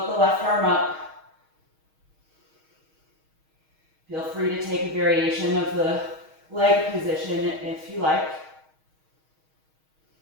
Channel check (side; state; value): left; late; 6.3 ms